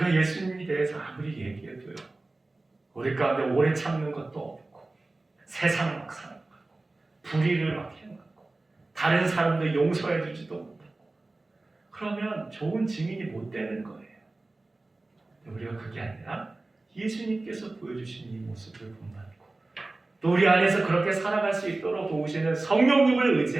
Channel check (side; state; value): left; quieter; 3.1 dB